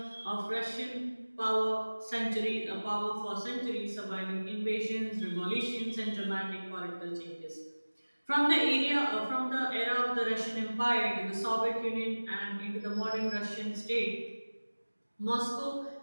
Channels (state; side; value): inverted; both; correlation -1.00